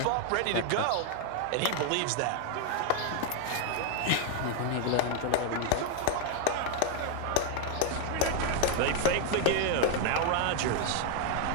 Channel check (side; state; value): both; different; correlation 0.01